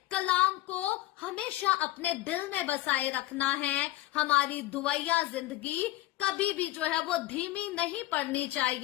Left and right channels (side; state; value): right; quieter; 16.5 dB